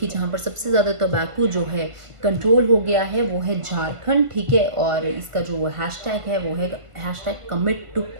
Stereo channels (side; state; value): left; late; 1.5 ms